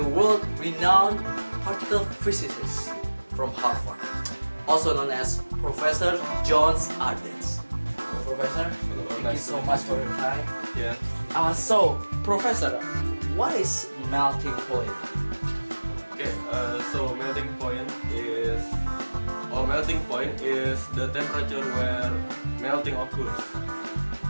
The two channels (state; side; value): inverted; both; correlation -1.00